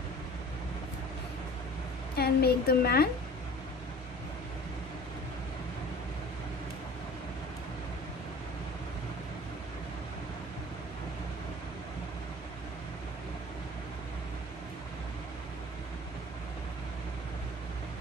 and make the man.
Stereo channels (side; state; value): both; normal; correlation 0.44